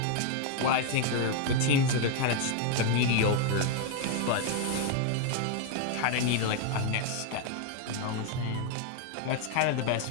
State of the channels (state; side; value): different; both; correlation 0.00